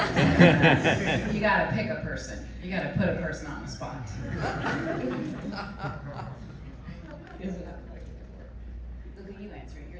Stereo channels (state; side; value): identical; both; correlation 1.00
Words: You got to pick a person. You got to put a person on the spot. Look at you answering.